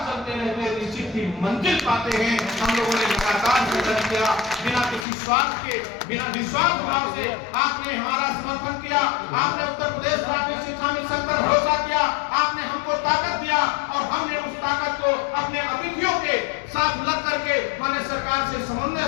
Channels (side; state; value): right; drops out; at 5.1 s